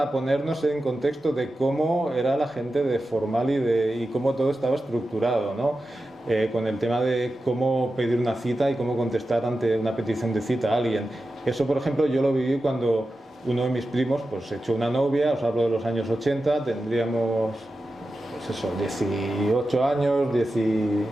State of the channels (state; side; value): normal; both; correlation 0.92